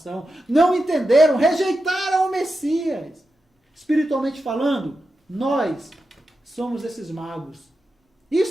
não entenderam, rejeitaram o Messias. Espiritualmente falando, nós somos esses magos.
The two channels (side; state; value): both; normal; correlation 0.90